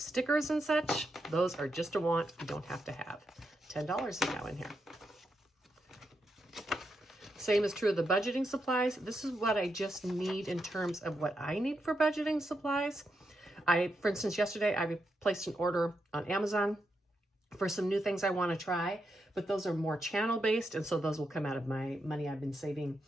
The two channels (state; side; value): normal; both; correlation 0.84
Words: and such, those are just a want. You don't have to have. $10 is now in here. Same is true of the budgeting supplies. This is what I just need in terms of what I need for budgeting supplies. For instance, yesterday I placed an order on Amazon for some new things I want to try, but those are more channel based. And so those will come out of my money I've been saving